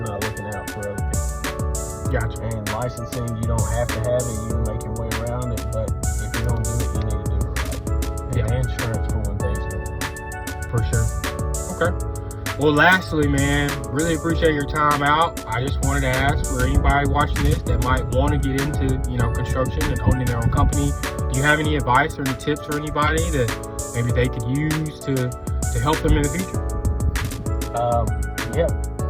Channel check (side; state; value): both; identical; correlation 1.00